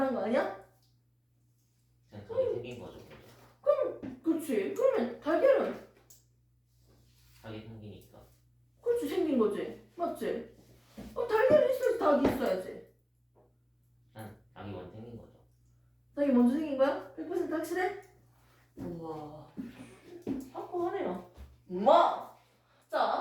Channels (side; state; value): both; identical; correlation 1.00